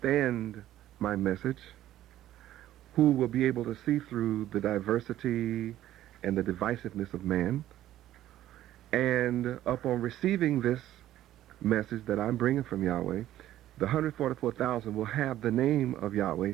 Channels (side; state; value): left; quieter; 13.3 dB